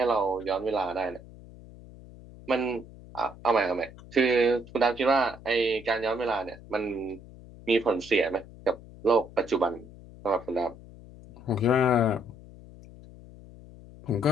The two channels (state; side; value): noise; left; hum, 19 dB below the sound